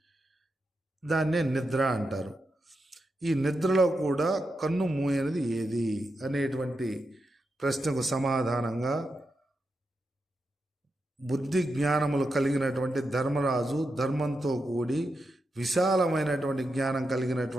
దాన్నే నిద్ర అంటారు. ఈ నిద్రలో కూడా కన్ను మూయనిది ఏది అనేటువంటి ప్రశ్నకు సమాధానంగా బుద్ధి జ్ఞానములు కలిగినటువంటి ధర్మరాజు, ధర్మంతో కూడి విశాలమైనటువంటి జ్ఞానం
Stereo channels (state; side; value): normal; both; correlation 0.87